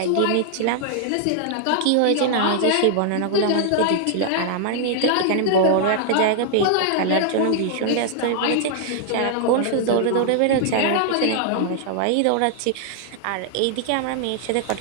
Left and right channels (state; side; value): different; both; correlation -0.01